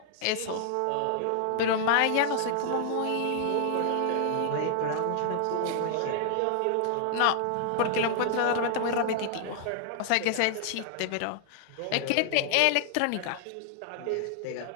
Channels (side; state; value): both; different; correlation 0.00